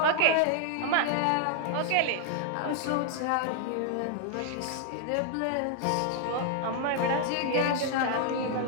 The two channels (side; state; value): both; different; correlation 0.00